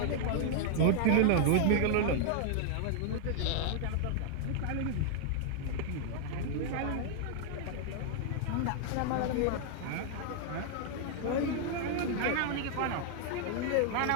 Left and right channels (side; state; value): both; different; correlation -0.01